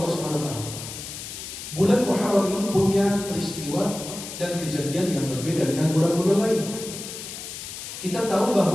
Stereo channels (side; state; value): left; noise; hiss, 10 dB below the sound